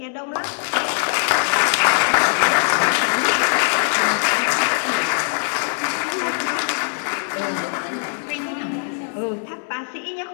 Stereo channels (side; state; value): right; silent; digital silence